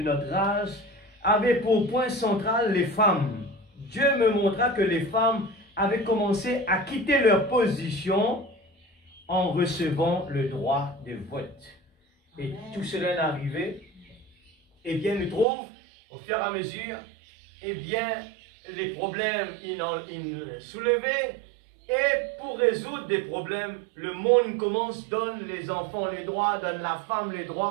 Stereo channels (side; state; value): left; drops out; at 15.5 s